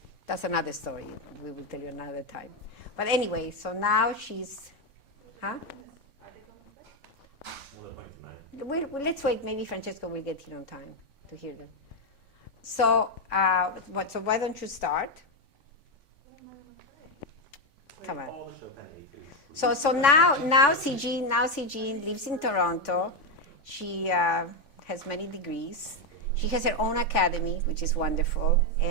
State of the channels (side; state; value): right; late; 3.5 ms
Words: That's another story. We will tell you another time. But anyway, so now she's, huh? Let's wait. Maybe Francesco will get here on time to hear them. So, so why don't you start? Come on. So now Sijin lives in Toronto. She has many degrees. She has her own academy, which is wonderful.